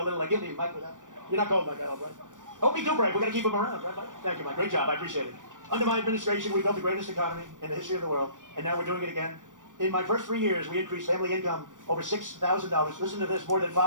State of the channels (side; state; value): left; late; 0.87 ms